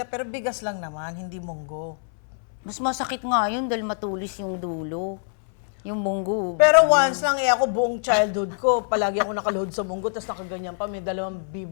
pero bigas lang naman, hindi munggo. Mas masakit nga yun dahil matulis yung dulo. Yung munggo. Pero once lang, ako buong childhood ko, palagi ako nakaluhod sa munggo, tapos nakaganyan pa, may dalawang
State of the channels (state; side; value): silent; right; 62 dB below the other